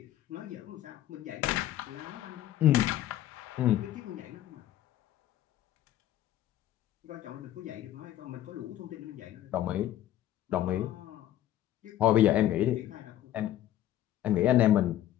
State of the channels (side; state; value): right; quieter; 12.8 dB